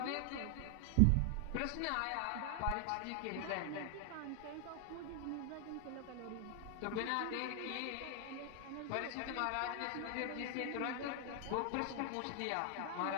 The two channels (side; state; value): both; different; correlation 0.00